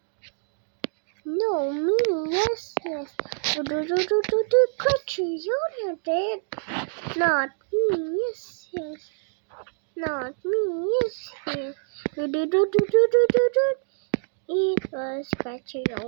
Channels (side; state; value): left; silent; digital silence